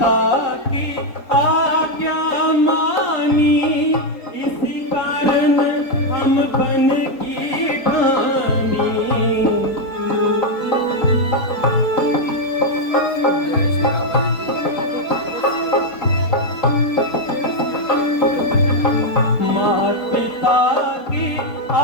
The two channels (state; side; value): late; right; 4.2 ms